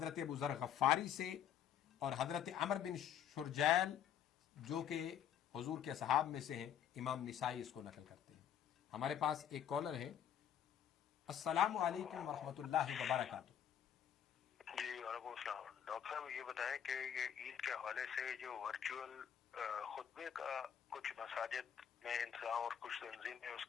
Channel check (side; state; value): right; quieter; 9.3 dB